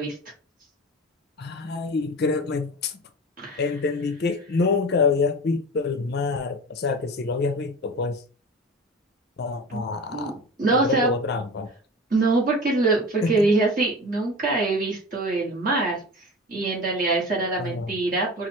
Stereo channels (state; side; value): normal; both; correlation 0.33